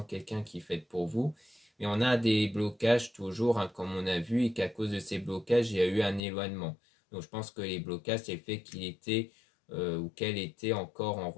quelqu'un qui est fait pour vous. Mais on a des blocages toujours, comme on a vu, et qu'à cause de ces blocages, il y a eu un éloignement. Donc je pense que les blocages, c'est le fait qu'il était ou qu'elle était encore en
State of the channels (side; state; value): right; drops out; at 6.2 s